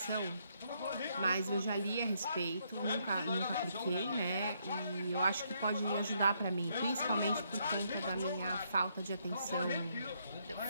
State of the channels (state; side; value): inverted; both; correlation -0.74